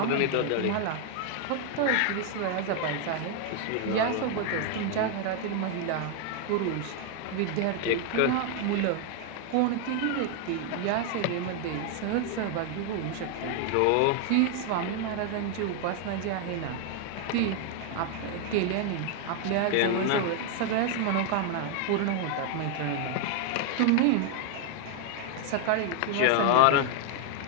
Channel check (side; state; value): both; different; correlation 0.00